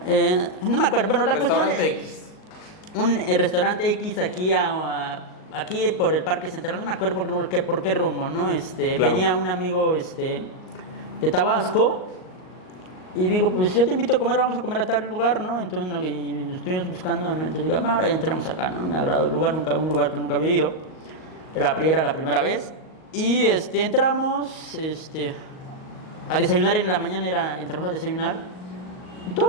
No me acuerdo, bueno, la cuestión es un restaurante X aquí aquí por el Parque Central, no me acuerdo por qué rumbo, ¿no? Claro. Venía un amigo de Tabasco y digo, pues yo te invito a comer, vamos a comer a tal lugar, ¿no? Entonces y estuvimos buscando, ¿no? Entonces digo, ahora ya entramos acá, ¿no? Me agradó el lugar, un lugar que nunca había ido, era la primera vez y entramos a desayunar en la mañana, entramos a desayunar.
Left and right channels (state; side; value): late; right; 38 ms